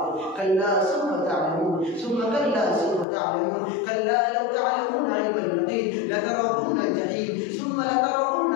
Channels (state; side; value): drops out; right; at 3.1 s